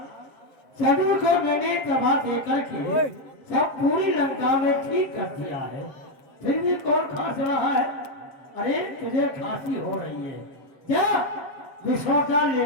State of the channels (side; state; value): right; late; 7.4 ms